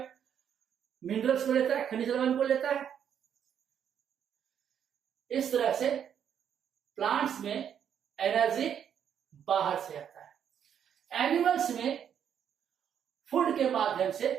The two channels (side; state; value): left; quieter; 8.7 dB